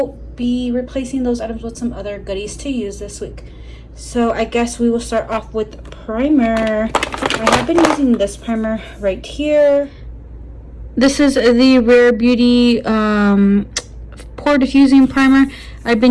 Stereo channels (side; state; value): both; identical; correlation 1.00